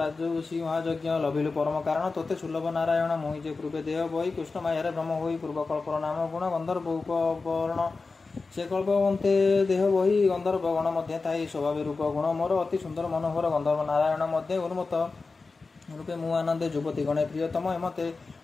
महायज्ञ लभिलु परम कारण तोते सुलभ नारायण मोहि जे पूर्वे देह बही कृष्ण मायारे ब्रह्म होई पूर्वकल्पर नाम गुण गंधर्व उपवर्ण से कल्पवंते देह बही गंधर्व गण मध्य थाई स्वभाव रूप गुण मोर अति सुंदर मनोहर गंधर्व नारायण मध्य उन्मत्त रूपे मु आनंदे युवती गणे प्रियतम एमते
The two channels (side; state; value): right; quieter; 4.0 dB